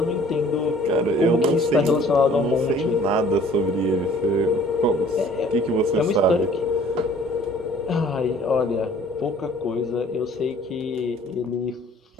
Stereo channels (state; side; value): normal; both; correlation 0.54